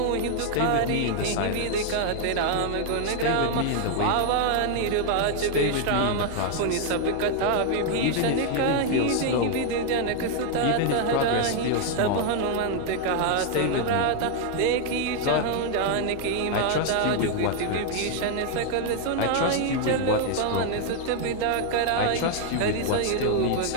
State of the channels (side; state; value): both; different; correlation 0.00